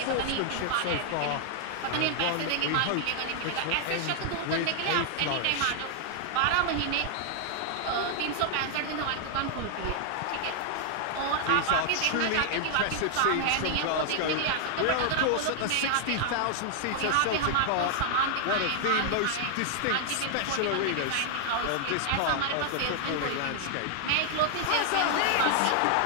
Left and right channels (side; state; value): both; different; correlation 0.00